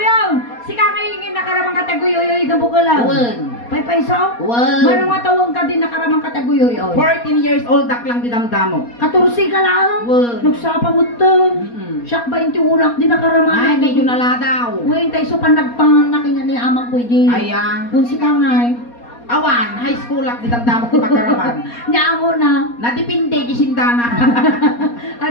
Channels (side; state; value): right; late; 4.2 ms